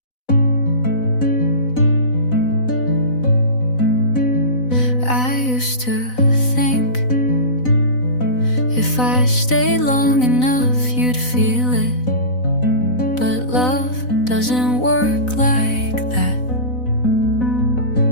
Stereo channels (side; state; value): right; late; 4.0 ms